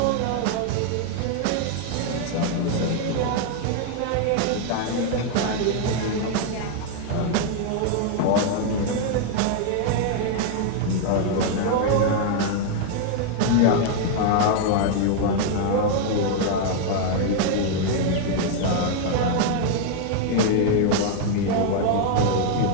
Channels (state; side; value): different; both; correlation 0.00